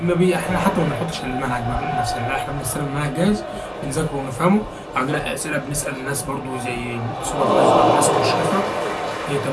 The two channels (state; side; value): identical; both; correlation 1.00